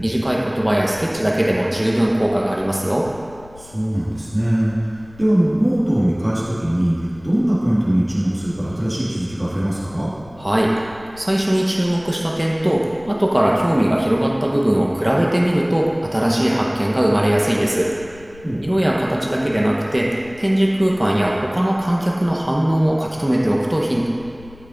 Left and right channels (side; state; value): left; noise; rumble, 22 dB below the sound